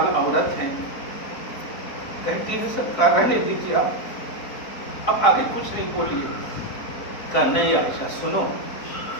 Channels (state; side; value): late; right; 4.2 ms